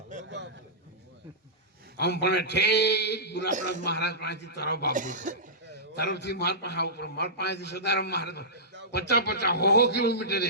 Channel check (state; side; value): normal; both; correlation -0.18